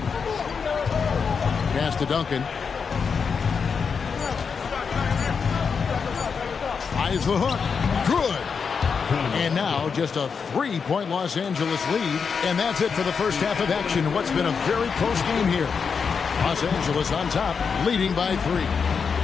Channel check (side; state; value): right; quieter; 5.9 dB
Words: Pass to Duncan. Tries the hook. Good. And now just a 3-point Los Angeles lead. And that's it for the first half of action. What's been a very close game here. Los Angeles on top, leading by 3.